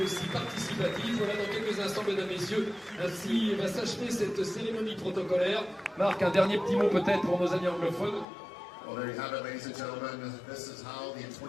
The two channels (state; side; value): drops out; right; at 8.2 s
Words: aussi participatif. Voilà, dans quelques instants, mesdames, messieurs, ainsi va s'achever cette cérémonie protocolaire. Marc, un dernier petit mot peut-être pour nos amis anglophones. Well, there you have it, ladies and gentlemen. This is how the